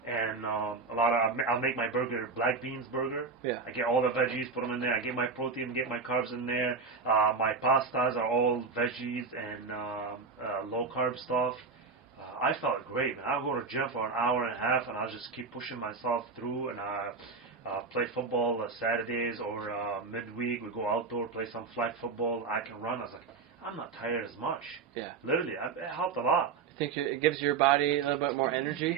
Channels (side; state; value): left; quieter; 4.7 dB